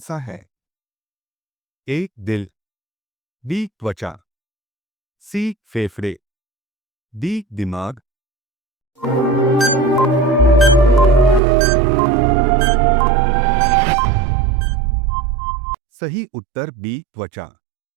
सा है? ए दिल, बी त्वचा, सी फेफड़े, डी दिमाग। सही उत्तर बी त्वचा।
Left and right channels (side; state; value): left; drops out; at 11.4 s